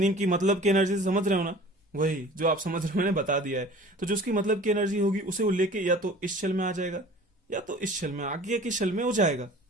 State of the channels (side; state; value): both; normal; correlation 0.44